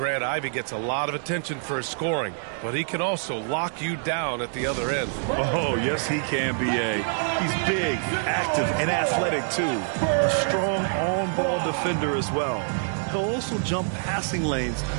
Ivy gets a lot of attention for his scoring, but he can also lock you down at the other end. Oh, yes, he can, B.A. He's big, active, and athletic, too. A strong on-ball defender as well. He'll also jump passing lanes,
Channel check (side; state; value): left; silent; digital silence